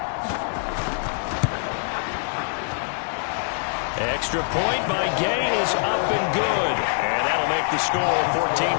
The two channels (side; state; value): right; silent; 63 dB below the other